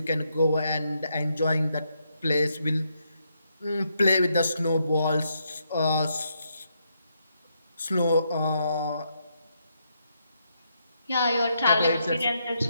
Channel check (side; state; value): both; inverted; correlation -0.78